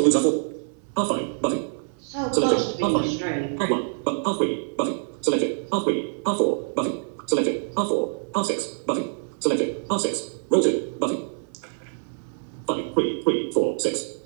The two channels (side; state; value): left; silent; 61 dB below the other